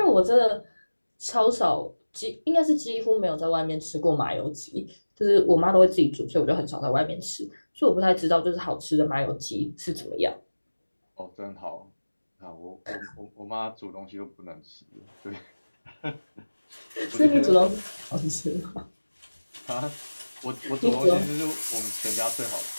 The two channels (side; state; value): both; inverted; correlation -1.00